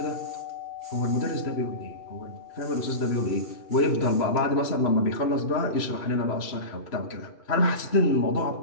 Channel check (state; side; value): late; right; 3.0 ms